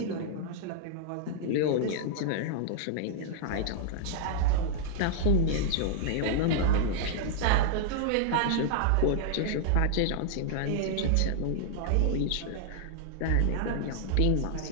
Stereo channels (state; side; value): different; both; correlation -0.01